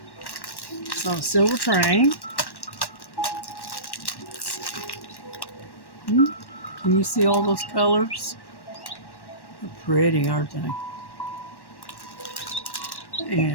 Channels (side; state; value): right; late; 1.1 ms